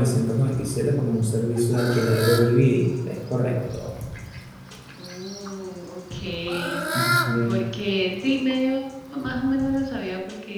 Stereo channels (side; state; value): both; identical; correlation 1.00